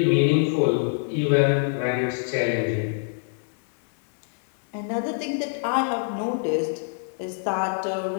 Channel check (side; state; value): right; silent; digital silence